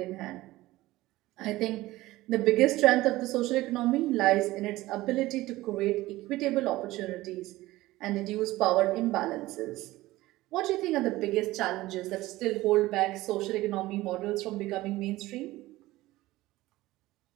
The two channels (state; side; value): quieter; left; 17.8 dB